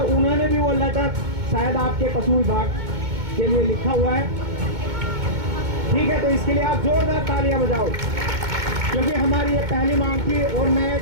उन्होंने भी वो लेटर शायद आपके पशु विभाग के लिए लिखा हुआ है। ठीक है, तो इसके लिए आप जोरदार तालियां बजाओ, क्योंकि हमारी ये पहली मांग थी। और मैं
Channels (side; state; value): left; late; 2.2 ms